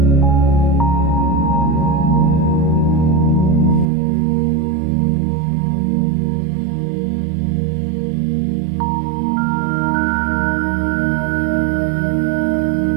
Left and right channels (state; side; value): drops out; left; at 3.9 s